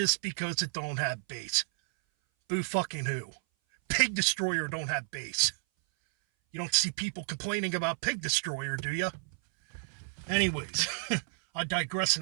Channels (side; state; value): left; silent; 57 dB below the other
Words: because it don't have bass. Boo fucking who? Pig Destroyer don't have bass. You don't see people complaining about Pig Destroyer, do you? Anyways, I digress,